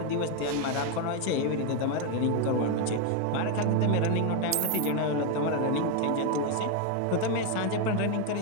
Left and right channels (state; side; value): different; both; correlation 0.02